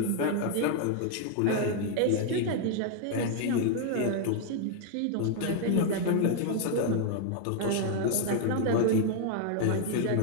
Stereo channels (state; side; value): different; both; correlation 0.00